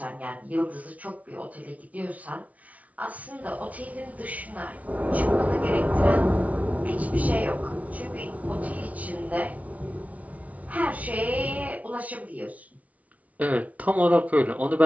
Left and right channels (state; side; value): late; left; 0.069 ms